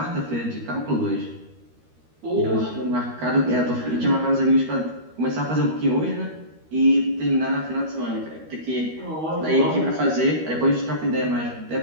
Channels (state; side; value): late; left; 13 ms